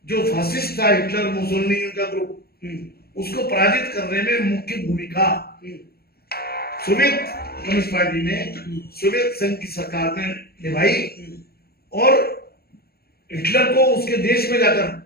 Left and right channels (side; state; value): right; late; 0.45 ms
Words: जो फासिस्ट था, हिटलर, मुसोलिनी का ग्रुप, उसको पराजित करने में मुख्य भूमिका सोवियत कम्युनिस्ट पार्टी ने, सोवियत संघ की सरकार ने निभाई। और हिटलर को उसके देश में जाकर